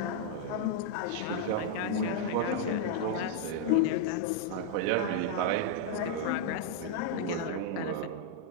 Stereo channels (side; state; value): both; different; correlation -0.01